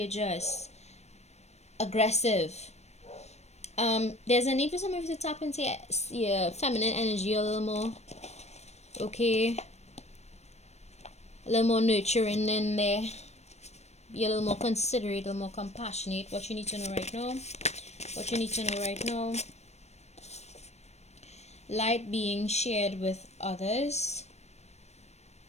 aggressive. There's a need for some of you to tap into your feminine energy a little more, okay? A little more nurturing in there. Be a little more considerate, a little more compassionate. What you need to know right now. Light being shared with others.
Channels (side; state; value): right; late; 0.32 ms